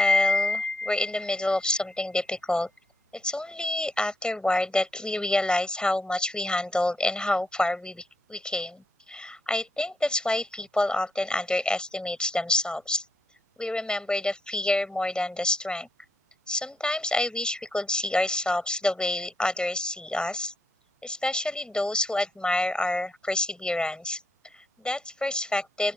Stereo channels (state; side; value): normal; both; correlation 0.77